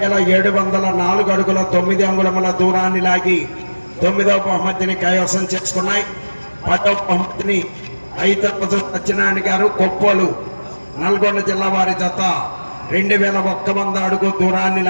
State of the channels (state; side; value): inverted; both; correlation -1.00